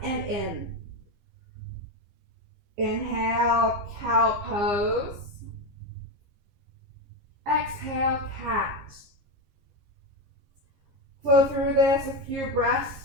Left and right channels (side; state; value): left; late; 15 ms